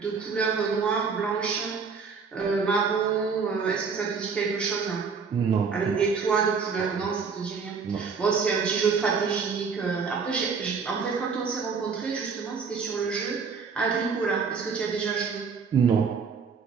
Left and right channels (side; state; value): left; quieter; 5.5 dB